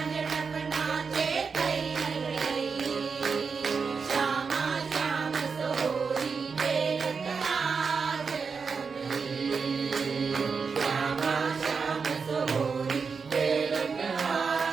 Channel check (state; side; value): quieter; left; 5.3 dB